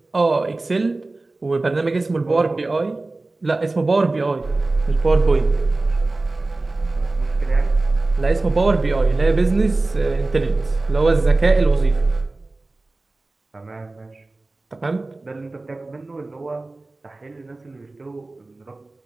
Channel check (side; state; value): left; quieter; 3.2 dB